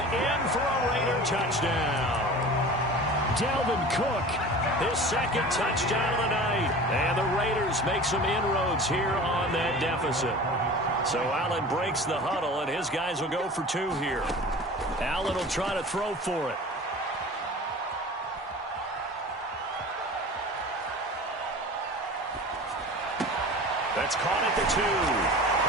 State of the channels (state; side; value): normal; both; correlation 0.38